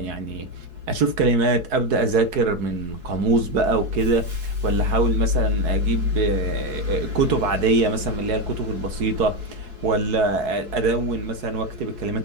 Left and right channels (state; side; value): late; left; 4.7 ms